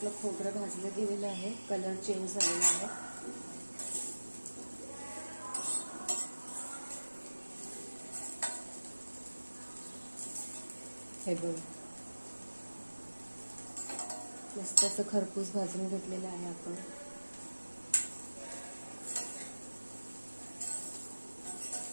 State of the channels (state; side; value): inverted; both; correlation -1.00